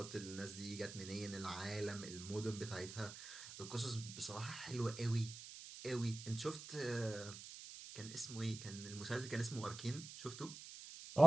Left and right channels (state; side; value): noise; right; hiss, 11 dB below the sound